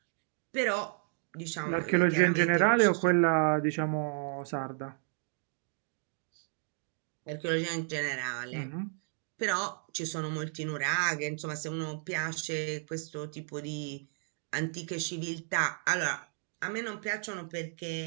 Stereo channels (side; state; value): left; silent; 56 dB below the other